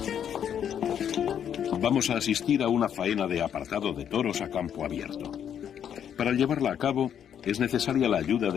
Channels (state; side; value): quieter; right; 8.9 dB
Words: Vamos a asistir a una faena de apartado de toros a campo abierto. Para llevarla a cabo es necesaria la ayuda